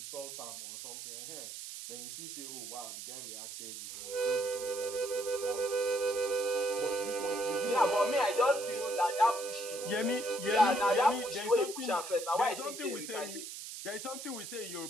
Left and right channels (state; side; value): noise; right; hiss, 9 dB below the sound